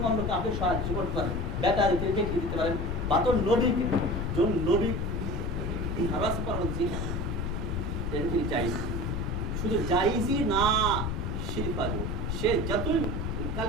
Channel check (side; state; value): left; noise; rumble, 1 dB below the sound